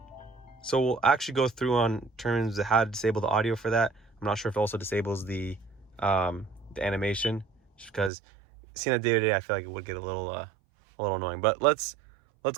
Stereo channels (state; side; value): drops out; left; at 8.1 s